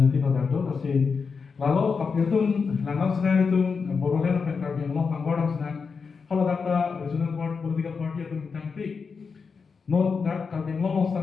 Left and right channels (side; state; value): right; quieter; 5.3 dB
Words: atau itu kasi lalu kapir tu langgam senang itu borolen apa yang kami mau panggoran senang kalau data regional board political party atau tangpi not that kami mau